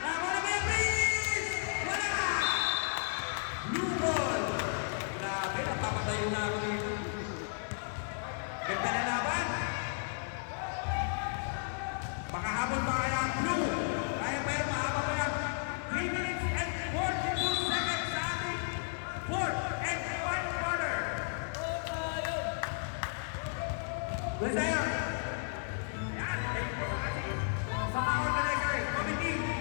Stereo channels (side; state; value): right; silent; 55 dB below the other